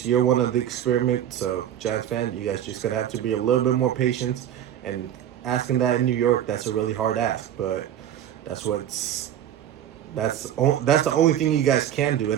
year one of the experiment. So Giants fan, you guys just gonna have to be a little bit more patient. And asking that in New York, that's a really hard ask. But that's what's that's the only thing you guys can do.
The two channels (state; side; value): quieter; left; 10.7 dB